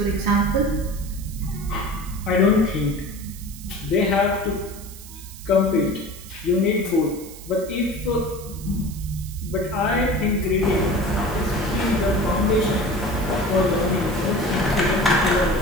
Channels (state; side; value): noise; right; hiss, 16 dB below the sound